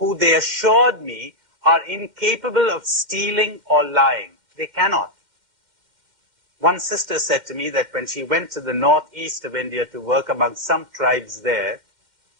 they assured me are incapable of stealing or lying. They cannot. One sister said to me that when she went to the northeast of India to work among some tribes there,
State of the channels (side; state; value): left; late; 2.1 ms